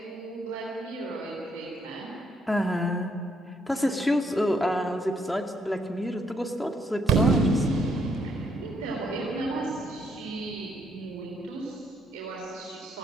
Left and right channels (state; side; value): normal; both; correlation 0.72